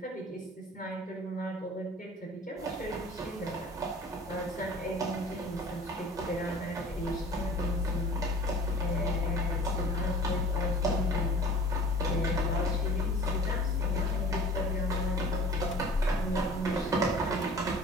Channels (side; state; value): both; normal; correlation 0.45